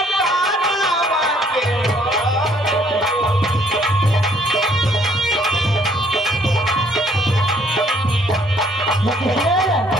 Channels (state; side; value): normal; both; correlation 0.63